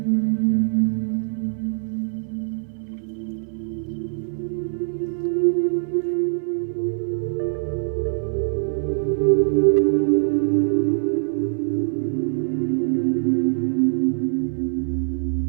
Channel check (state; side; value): silent; left; 59 dB below the other